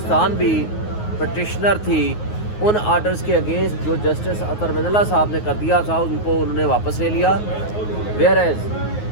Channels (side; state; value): right; late; 9.5 ms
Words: भी पटिशनर थी, उन आर्डर्स के अगेंस्ट जो जस्टिस अतर मिनल्ला साहब ने कर दिया था उनको उन्होंने वापस ले लिया। वेयर एज